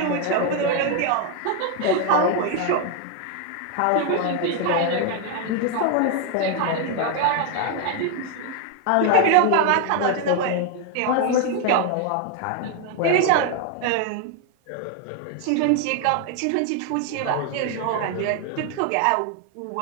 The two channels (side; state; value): both; different; correlation 0.01